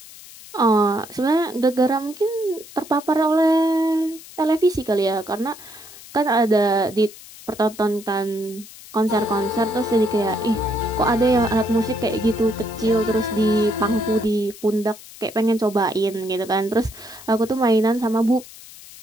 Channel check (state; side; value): noise; left; hiss, 18 dB below the sound